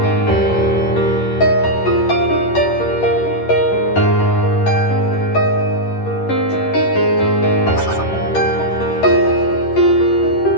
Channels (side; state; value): right; late; 11 ms